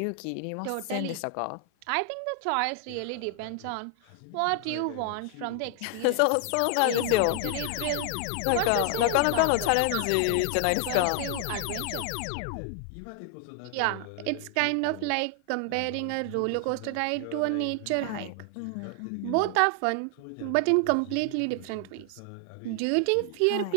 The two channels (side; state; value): both; different; correlation 0.00